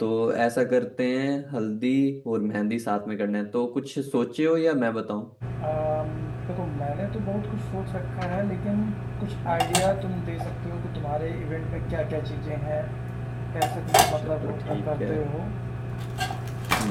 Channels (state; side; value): identical; both; correlation 1.00